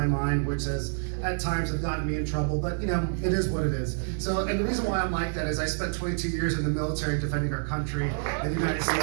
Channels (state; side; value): silent; left; digital silence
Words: mind, which has at times have gotten me in trouble, but you know, it is what it is. So, and the reason why I'm like that is I spent 22 years in the military defending our country and the United